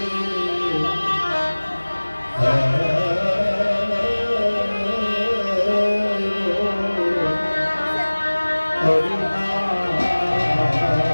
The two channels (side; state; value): both; inverted; correlation -1.00